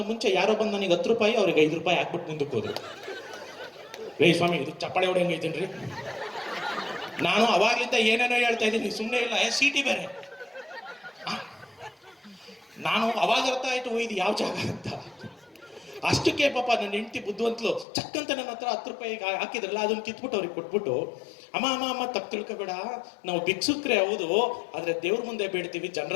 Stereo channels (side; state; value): right; drops out; at 17.9 s